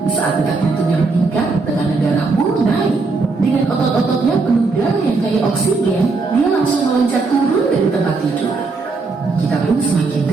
Saat detak jantungnya meningkat, tekanan darah pun naik. Dengan otot-ototnya penuh darah yang kaya oksigen, dia langsung meloncat turun dari tempat tidur. Kita pun semakin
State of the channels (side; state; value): left; quieter; 4.0 dB